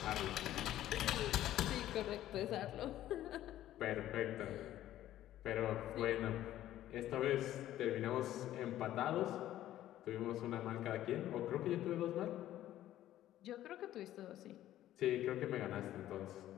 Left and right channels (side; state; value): right; quieter; 13.2 dB